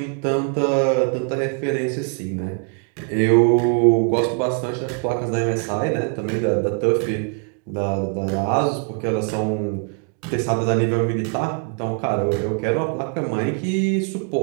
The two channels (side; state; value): left; quieter; 39.0 dB